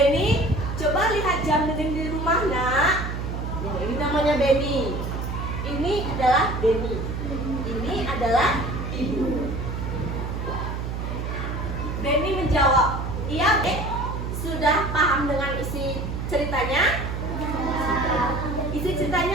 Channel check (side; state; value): right; noise; hum, 4 dB below the sound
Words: coba lihat jam dinding di rumah nak. Nah, ini namanya Beni. Ini adalah Beni. Ini adalah ibu. Beni menjawab, iya sudah paham dengan isi ceritanya? Isi